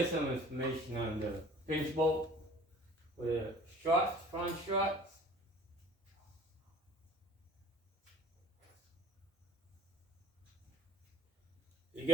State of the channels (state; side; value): normal; both; correlation 0.49